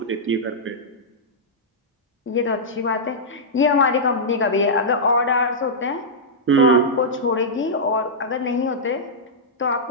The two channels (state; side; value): normal; both; correlation -0.10